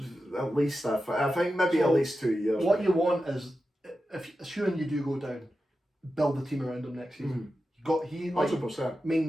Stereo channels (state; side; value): normal; both; correlation 0.91